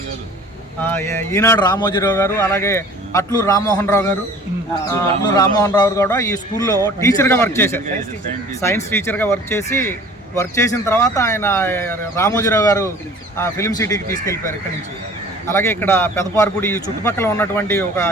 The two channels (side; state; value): both; normal; correlation 0.47